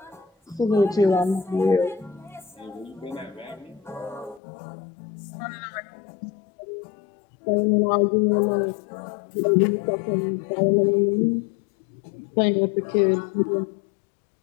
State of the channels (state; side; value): drops out; right; at 4.4 s